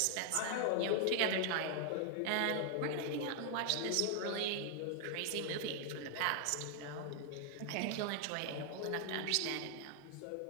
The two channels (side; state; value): both; different; correlation 0.00